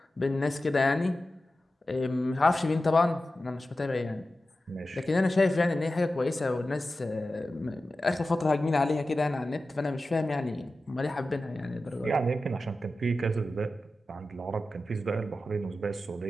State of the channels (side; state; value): both; normal; correlation 0.93